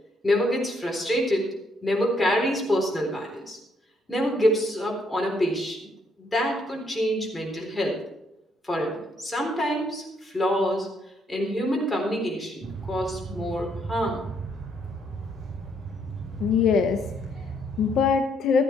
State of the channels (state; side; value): normal; both; correlation 0.71